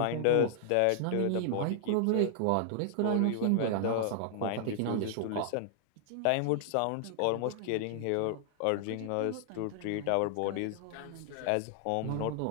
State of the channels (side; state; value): both; different; correlation -0.01